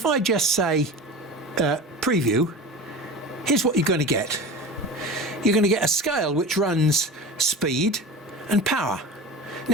I just say preview, here's what you're going to get. You're going to get a scale which runs speed and power.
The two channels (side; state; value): both; normal; correlation 0.32